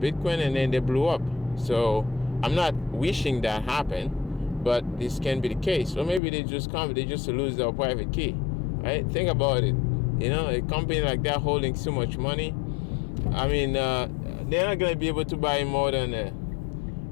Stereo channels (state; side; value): drops out; right; at 6.2 s